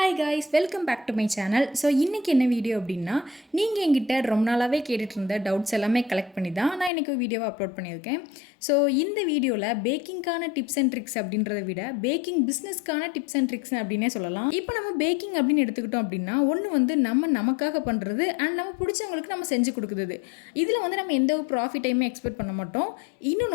Hi guys, welcome back to my channel. So இன்றைக்கி என்ன வீடியோ அப்படின்னா, நீங்கள் என்கிட்ட ரொம்ப நாளாகவே கேட்டுட்டு இருந்த டவுட்ஸ் எல்லாமே கலெக்ட் பண்ணி தான் நான் இன்றைக்கி வீடியோவை அப்லோட் பண்ணியிருக்கேன். ஸோ இந்த வீடியோவில் பேக்கிங்கான டிப்ஸ் அண்ட் ட்ரிக்ஸ் அப்படின்றத விட பேக்கிங் பிஸ்னஸ்க்கான டிப்ஸ் அண்ட் ட்ரிக்ஸ் அப்படின்னே சொல்லலாம். இப்போ நம்ம பேக்கிங் அப்படின்னு எடுத்துக்கிட்டோம் அப்படின்னா, ஒன்று வந்து நமக்காக பண்ணுறது அண்ட் நம்ம பிடிச்சவங்களுக்கு நம்ம செஞ்சு கொடுக்குறது. இதில் வந்து நம்ம எந்த ஒரு ப்ராஃபிட்டையுமே எக்ஸ்பெக்ட் பண்ண மாட்டோம்.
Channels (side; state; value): right; drops out; at 6.9 s